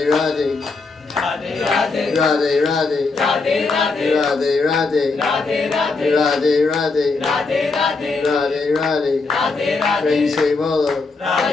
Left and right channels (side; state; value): right; quieter; 4.0 dB